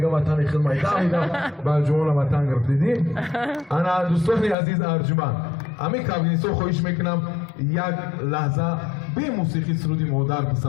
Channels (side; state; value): right; drops out; at 4.5 s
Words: ватани хидмайда ида балҷувона ватан гирифтидим. ана дӯстони азиз арҷуманд ҳамин кавгинисо хоҳиш мекунам як лаҳза бе мусиқӣ суруди модар